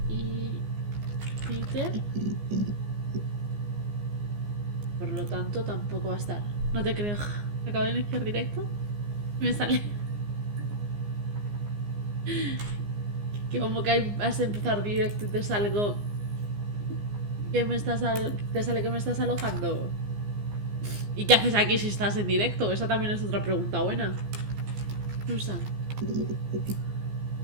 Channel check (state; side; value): late; left; 15 ms